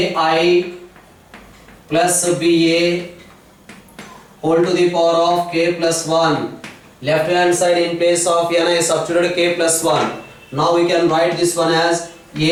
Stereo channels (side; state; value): both; identical; correlation 1.00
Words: plus BA whole to the power of k plus 1. Left hand side in place of n I substituted k plus 1. Now we can write this one as